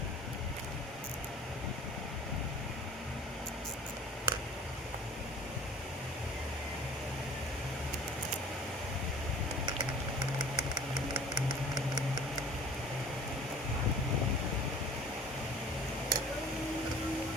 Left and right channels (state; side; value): normal; both; correlation 0.46